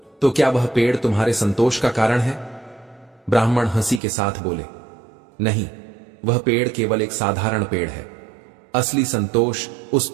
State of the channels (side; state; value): left; drops out; at 4.0 s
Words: तो क्या वह पेड़ तुम्हारे संतोष का कारण है? ब्राह्मण हंसी के साथ बोले, नहीं, वह पेड़ केवल एक साधारण पेड़ है। असली संतोष उस